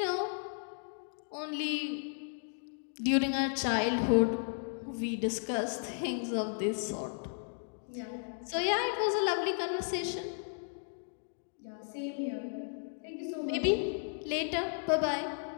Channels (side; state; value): right; silent; 55 dB below the other